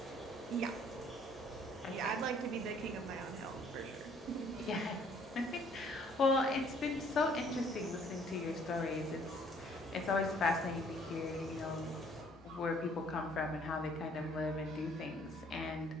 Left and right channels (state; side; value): normal; both; correlation 0.60